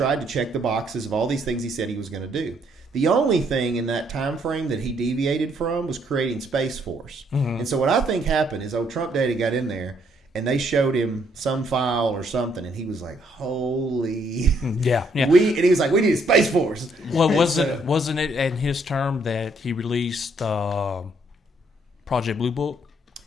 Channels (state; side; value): normal; both; correlation 0.69